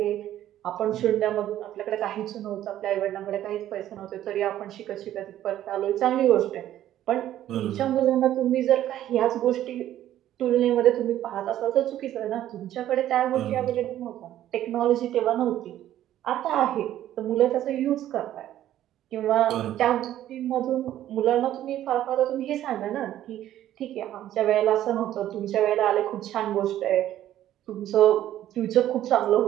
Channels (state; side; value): quieter; left; 12.5 dB